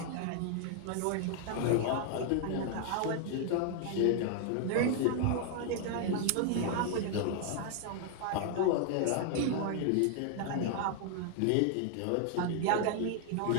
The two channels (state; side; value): different; both; correlation 0.00